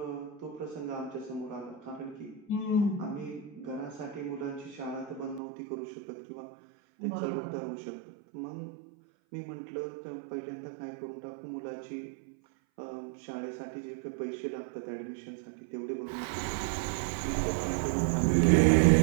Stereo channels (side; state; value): left; drops out; at 5.4 s